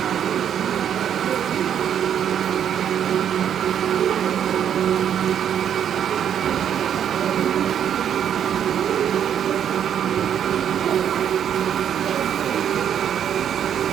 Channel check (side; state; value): left; quieter; 9.1 dB